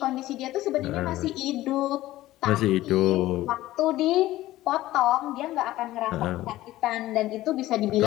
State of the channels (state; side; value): quieter; right; 15.9 dB